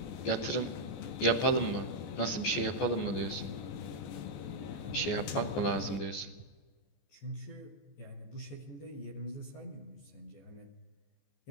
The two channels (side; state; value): right; late; 14 ms